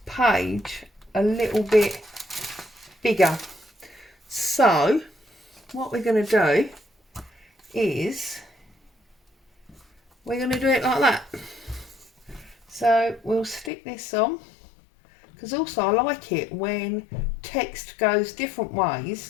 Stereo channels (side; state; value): right; drops out; at 13.7 s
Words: page a little bit bigger. So what we're going to do is we're going to do it like that. So we'll stick this on, because also I like it when text goes different